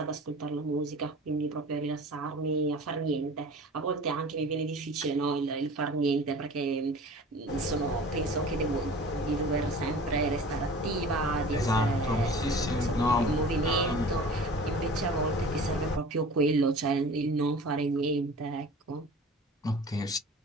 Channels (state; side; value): normal; both; correlation 0.41